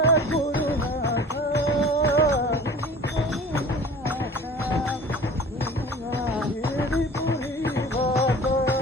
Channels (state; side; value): normal; both; correlation 0.42